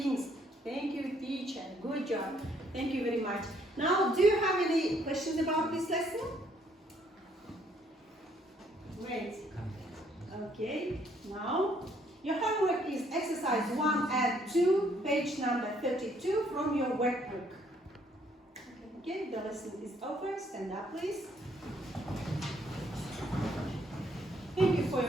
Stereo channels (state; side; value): normal; both; correlation 0.67